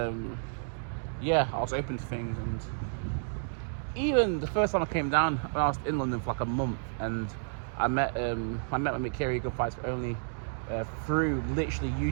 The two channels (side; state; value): left; silent; digital silence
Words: I was open to things, and even the first time I came down, when I was in London for like a month, and I met my mate Kerry, Good Fights For Only, through literally